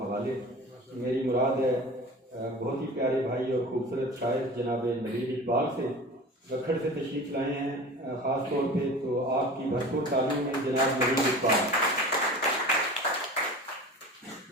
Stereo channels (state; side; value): normal; both; correlation 0.37